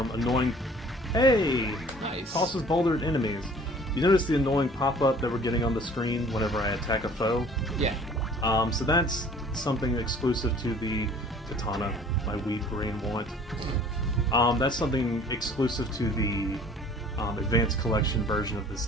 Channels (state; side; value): normal; both; correlation 0.51